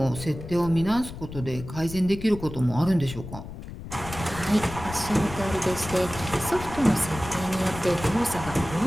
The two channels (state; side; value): noise; left; rumble, 11 dB below the sound